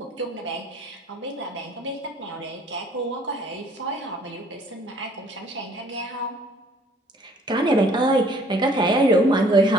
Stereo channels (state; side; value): normal; both; correlation 0.58